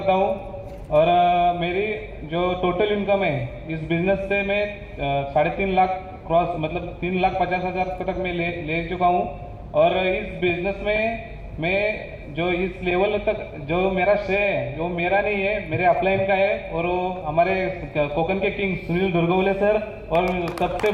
हूँ और मेरी जो टोटल इनकम है इस बिजनेस से मैं 3.5 लाख क्रॉस, मतलब 3,50,000 तक मैं ले चुका हूँ। और इस बिजनेस में मैं जो इस लेवल तक जो मेरा श्रेय है, जो मेरा नहीं है, मेरे अपलाइन का है। और वो हमारे कोकण के किंग सुनील दुर्गवले सर और सबसे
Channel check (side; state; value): both; identical; correlation 1.00